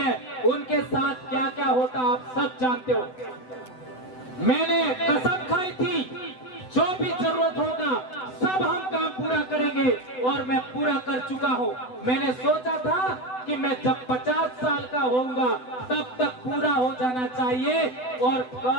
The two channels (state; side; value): late; right; 7.9 ms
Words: उनके साथ क्या क्या होता आप सब जानते हो। मैंने कसम खाई थी, जो भी जरूरत होगा सब हम काम पूरा करेंगे, और मैं पूरा कर चुका हूं। मैंने सोचा था कि मैं जब 50 साल का होऊंगा तब तक पूरा हो जाना चाहिए, और